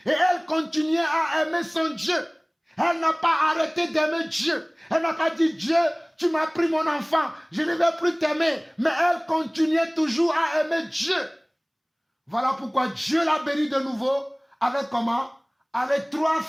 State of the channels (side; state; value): both; identical; correlation 1.00